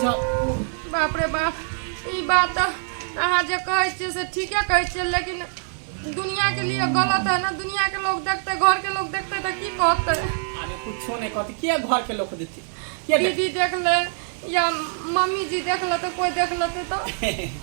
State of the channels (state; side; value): silent; left; 61 dB below the other